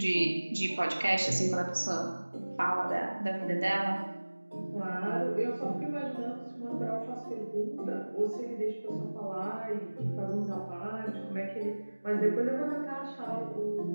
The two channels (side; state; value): both; inverted; correlation -1.00